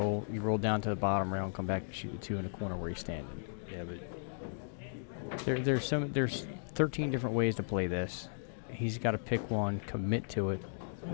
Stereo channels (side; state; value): right; silent; digital silence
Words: roll down to the bottom rail and come back and shoot the 2 in the corner where he's standing. Yeah, but there's 13 different ways to play this. He's got to pick one, commit to it,